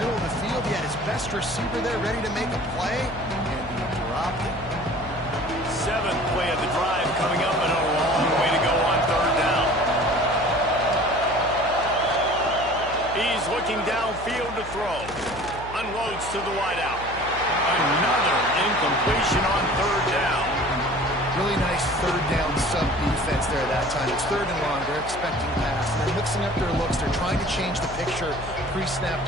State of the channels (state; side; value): noise; left; hum, 14 dB below the sound